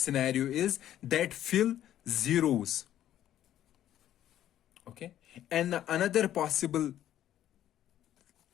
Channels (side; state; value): right; quieter; 11.9 dB